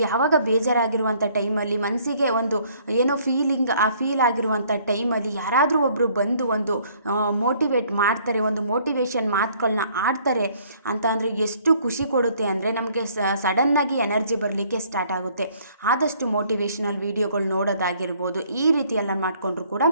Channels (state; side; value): inverted; both; correlation -0.61